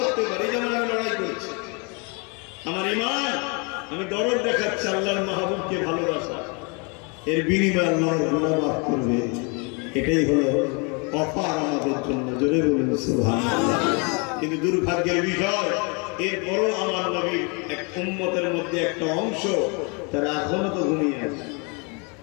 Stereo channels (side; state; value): right; quieter; 32.8 dB